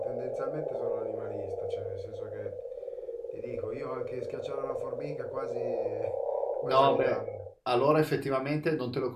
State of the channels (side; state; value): both; identical; correlation 1.00